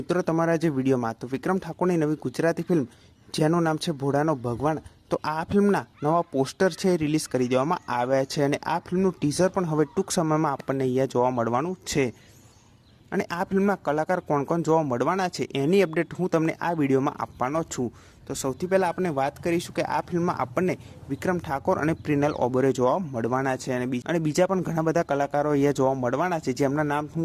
તમારા જે વિડીયોમાં। તો વિક્રમ ઠાકોરની નવી ગુજરાતી ફિલ્મ જેનું નામ છે ભોળાનો ભગવાન, તો આ ફિલ્મના નવા પોસ્ટર છે રિલીઝ કરી દેવામાં આવ્યા છે અને આ ફિલ્મનું ટીઝર પણ હવે ટૂંક સમયમાં આપણને અહીંયા જોવા મળવાનું છે। અને આ ફિલ્મમાં કલાકાર કોણ કોણ જોવા મળવાના છે એની અપડેટ હું તમને આ વિડીયોમાં આપવાનો છું। તો સૌથી પહેલાં આપણે વાત કરીશું કે આ ફિલ્મમાં આપણને વિક્રમ ઠાકોર અને પ્રિનલ ઓબેરોય જોવા મળવાના છે અને બીજા પણ ઘણા બધા કલાકારો અહીંયા જોવા મળવાના છે, જેમના નામ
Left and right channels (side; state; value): both; identical; correlation 1.00